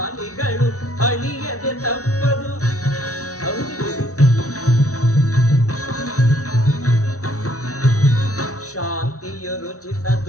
ಅಳಿಯದೆ ತಪ್ಪದು ಶಾಂತಿಯು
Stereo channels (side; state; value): right; late; 0.66 ms